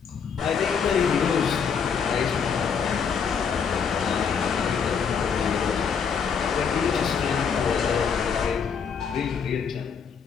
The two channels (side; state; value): right; quieter; 6.5 dB